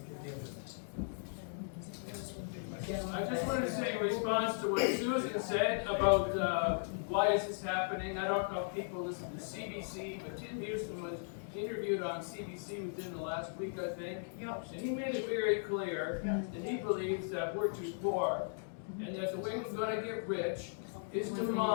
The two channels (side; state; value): right; silent; digital silence